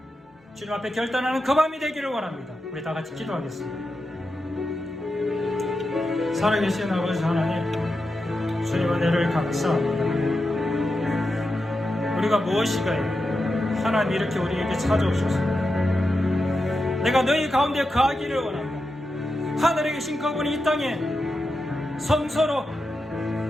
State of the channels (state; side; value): normal; both; correlation 0.89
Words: 주님 앞에 결단하는 그 밤이 되기를 원합니다. 우리 다 같이 기도하겠습니다. 살아계신 아버지 하나님, 주님 은혜를 감사합니다. 우리가 무엇이가요? 하나님 이렇게 우리에게 찾아오셨습니다. 내가 너희 가운데 거하기를 원한다. 하늘에 계신 그분이 이 땅에 성소로